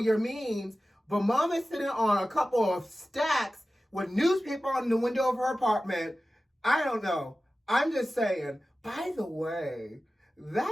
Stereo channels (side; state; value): both; normal; correlation 0.95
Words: means, but mom is sitting on a couple of stacks with newspaper on the window of her apartment. I don't know. I'm just saying. By the way,